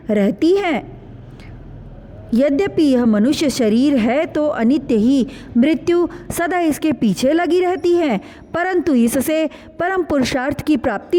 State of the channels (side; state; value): both; identical; correlation 1.00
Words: रहती है। यद्यपि यह मनुष्य शरीर है तो अनित्य ही, मृत्यु सदा इसके पीछे लगी रहती है, परंतु इससे परम पुरुषार्थ की